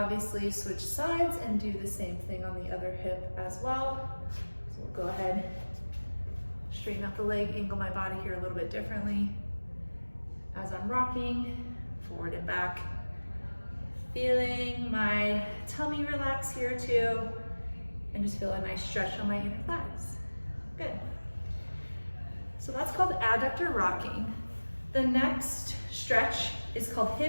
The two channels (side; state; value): both; inverted; correlation -1.00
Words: switch sides and do the same thing on the other hip as well. So we'll go ahead, straighten out the leg, angle my body here a little bit differently as I'm rocking forward and back. Feeling my tummy relax here too, and just feel a nice stretch on my inner thighs. Good. So that's called adductor rocking. The next stretch is called